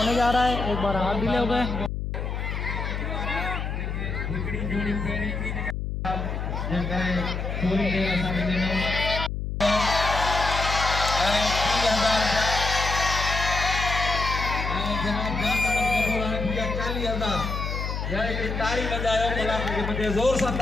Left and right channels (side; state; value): left; noise; hum, 3 dB below the sound